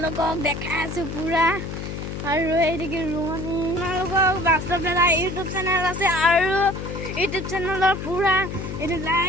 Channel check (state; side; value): noise; left; hum, 6 dB below the sound